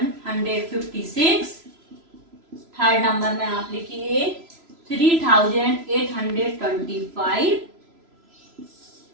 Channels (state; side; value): late; left; 3.0 ms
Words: थर्ड नंबर में आप लिखिए 3825,